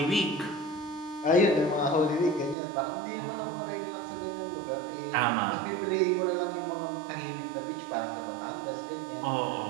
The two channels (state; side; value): drops out; left; at 2.6 s